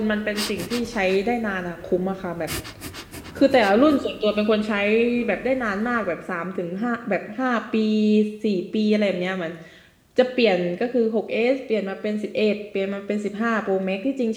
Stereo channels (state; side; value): identical; both; correlation 1.00